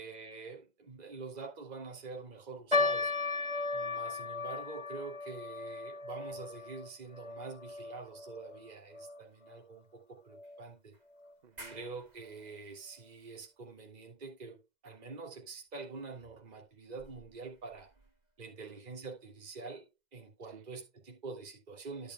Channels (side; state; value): left; late; 2.0 ms